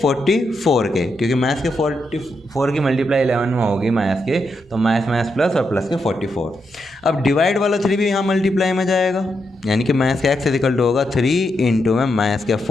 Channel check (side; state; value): both; normal; correlation 0.83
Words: के, क्योंकि -के 44 की मल्टीप्लाई 11 में होगी के, तो माइनस प्लस और प्लस के 44। अब डिवाइड वाला 3 भी यहाँ मल्टीप्लाई में जाएगा, यानी कि के x इज इक्वल टू होगा 3 इंटू में के